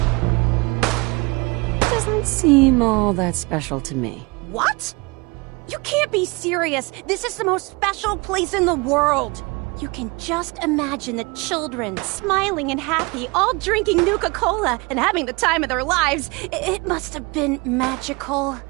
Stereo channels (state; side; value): quieter; left; 26.7 dB